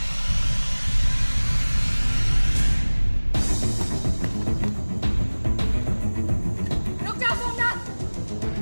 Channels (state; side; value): inverted; both; correlation -1.00